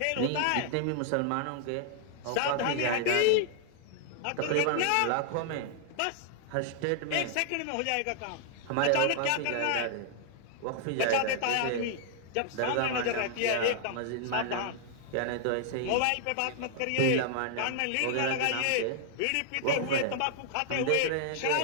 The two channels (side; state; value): both; different; correlation -0.01